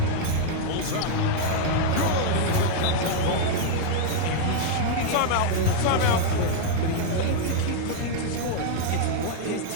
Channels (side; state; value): both; different; correlation -0.01